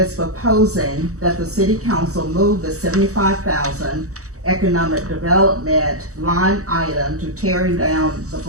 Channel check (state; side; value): late; left; 0.65 ms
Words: proposing that the City Council move the $75,000 economic development line item to tearing down the